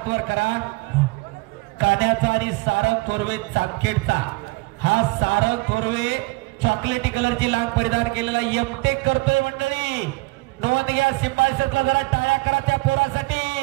वर करा. कान्याचा आणि सारंग थोरवे चापखेडचा. हा सारंग थोरवे चॉकलेटी कलरची लांब परिधान केलेला एमटेक करतोय मंडळी. नोंद घ्या. सिंबायसरला जरा टाळ्या करा त्या पोरासाठी.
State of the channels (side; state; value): left; quieter; 23.5 dB